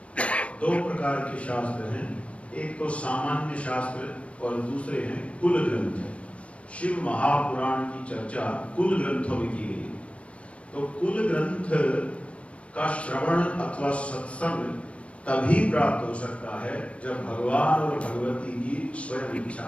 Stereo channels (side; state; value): right; late; 0.062 ms